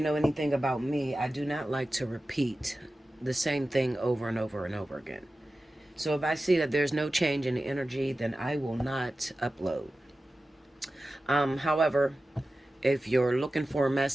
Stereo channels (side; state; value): both; normal; correlation 0.94